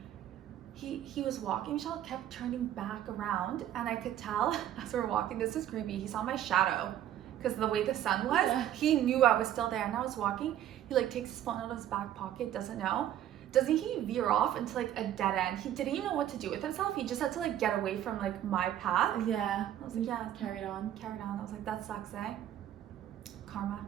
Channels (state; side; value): quieter; left; 11.6 dB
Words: He was walking, Michelle kept turning back around and I could tell as we were walking, this is creepy, he saw my shadow because the way the sun was, Yeah. he knew I was still there and I was walking. He like takes his phone out of his back pocket, doesn't know. Doesn't he veer off into like a dead end? He didn't even know what to do with himself. He just had to like get away from like my path. Yeah. I was like, yeah, Carried on. carried on. I was like, that sucks, eh? Karma.